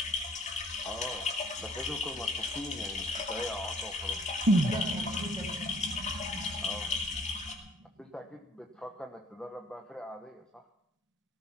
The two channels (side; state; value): both; normal; correlation 0.57